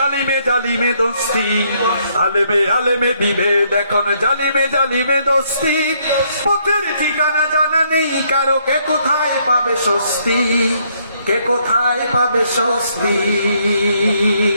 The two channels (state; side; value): inverted; both; correlation -0.70